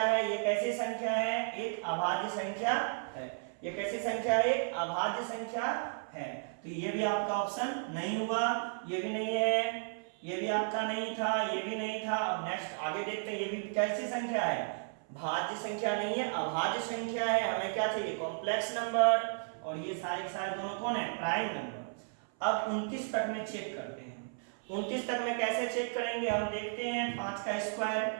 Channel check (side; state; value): left; silent; 55 dB below the other